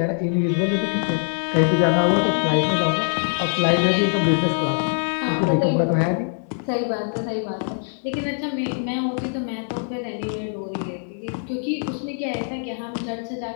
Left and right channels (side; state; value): right; silent; 63 dB below the other